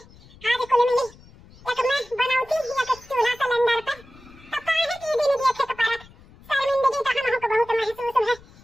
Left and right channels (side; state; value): left; noise; rumble, 24 dB below the sound